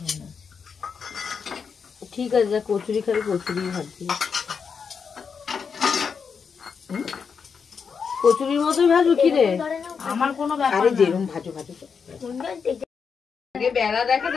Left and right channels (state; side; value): quieter; right; 6.1 dB